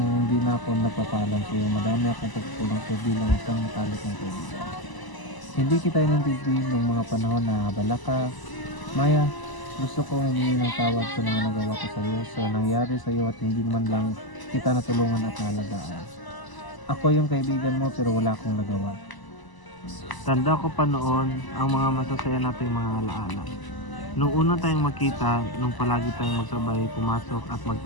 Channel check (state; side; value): late; right; 1.0 ms